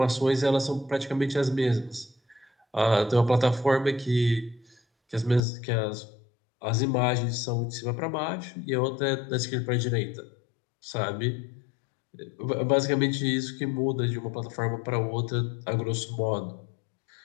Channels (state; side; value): drops out; right; at 5.4 s